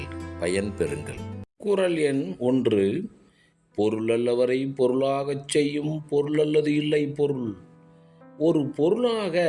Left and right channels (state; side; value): identical; both; correlation 1.00